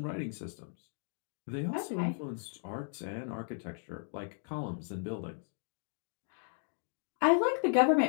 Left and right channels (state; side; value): silent; right; digital silence